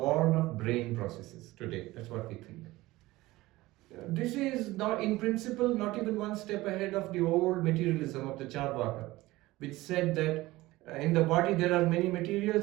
of brain processes today. That's what we think. This is not, in principle, not even one step ahead of the old materialism of the Charvaka, which said that in the body there are many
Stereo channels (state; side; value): quieter; left; 18.7 dB